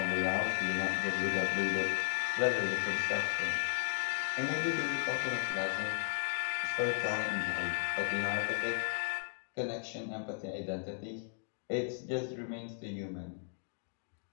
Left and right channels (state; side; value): silent; right; digital silence